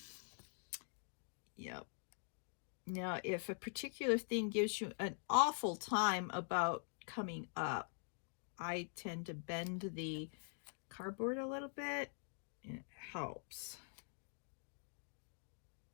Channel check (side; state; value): right; silent; digital silence